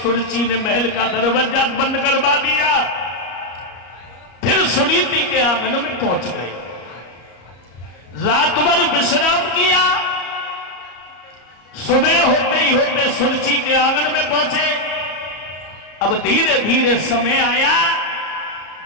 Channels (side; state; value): right; late; 34 ms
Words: ने महल का दरवाजा बंद करवा दिया। फिर सुनीति के आंगन में पहुंच गए, रात भर विश्राम किया। सुबह होते ही होते सुरची के आंगन में पहुंचे। अब धीरे धीरे समय आया,